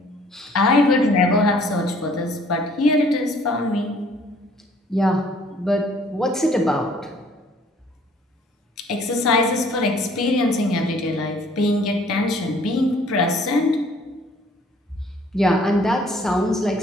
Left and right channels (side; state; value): both; normal; correlation 0.58